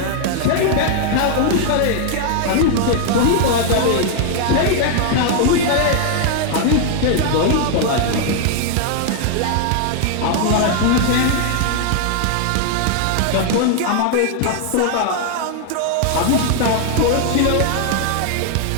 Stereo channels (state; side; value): different; both; correlation 0.00